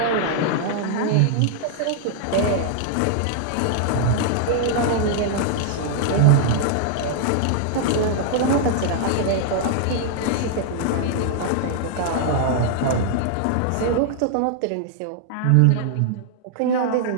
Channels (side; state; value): both; different; correlation -0.01